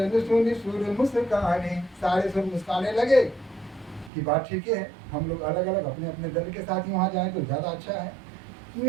सुनि सुर मुस्काने, सारे सुर मुस्काने लगे कि बात ठीक है, हम लोग अलग अलग अपने अपने दल के साथ ही वहां जाएं तो ज्यादा अच्छा है।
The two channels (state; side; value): drops out; left; at 4.1 s